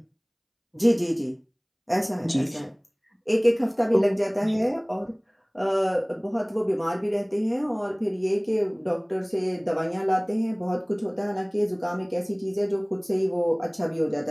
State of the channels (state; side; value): identical; both; correlation 1.00